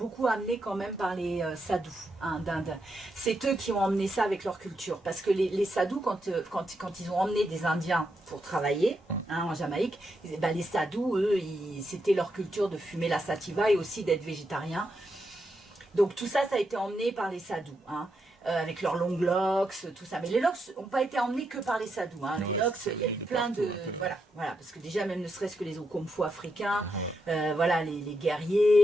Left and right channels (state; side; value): normal; both; correlation 0.82